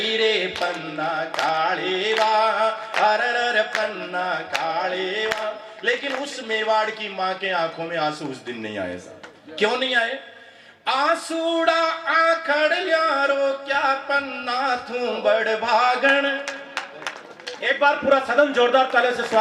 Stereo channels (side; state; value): both; identical; correlation 1.00